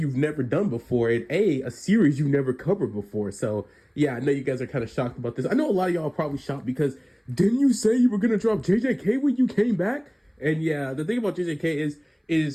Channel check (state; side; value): identical; both; correlation 1.00